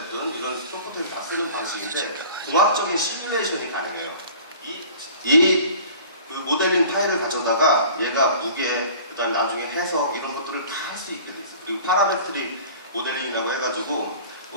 이런 소프트웨어를 다 쓰는 방식인데 공학적인 시뮬레이션이 가능해요. 그 모델링 파일을 가져다가 얘가 무게, 그다음 나중에 해석 이런 것들을 다 할 수 있게 돼 있어요. 그리고 파라메트릭 모델링이라고 해가지고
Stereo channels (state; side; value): inverted; both; correlation -0.45